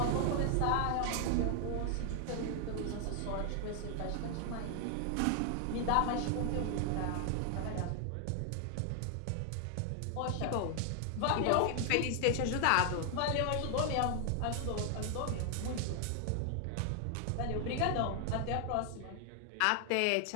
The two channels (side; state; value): both; different; correlation 0.00